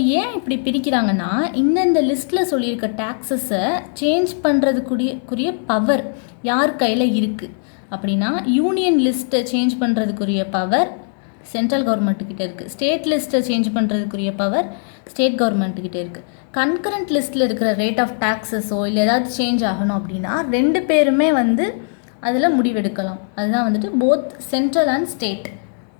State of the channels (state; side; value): silent; right; digital silence